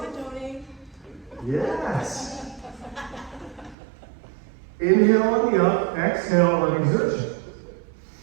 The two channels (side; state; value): left; drops out; at 3.8 s